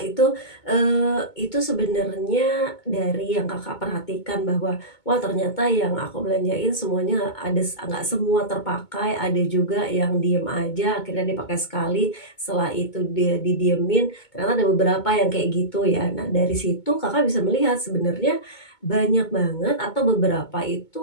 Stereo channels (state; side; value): late; right; 2.2 ms